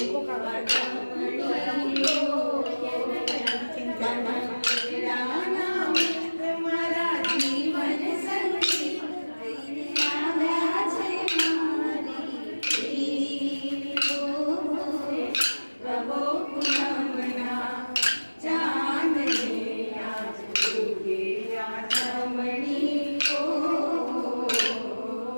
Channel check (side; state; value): both; inverted; correlation -1.00